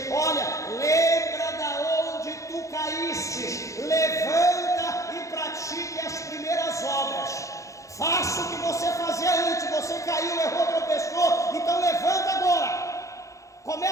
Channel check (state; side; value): late; right; 0.15 ms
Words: olha, lembra da onde tu caíste, levanta e pratique as primeiras obras. Faça o que você fazia antes, você caiu, errou, tropeçou, então levanta agora.